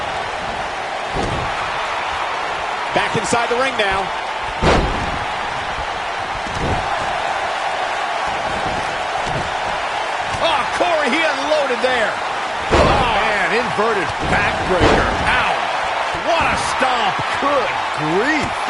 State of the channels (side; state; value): both; identical; correlation 1.00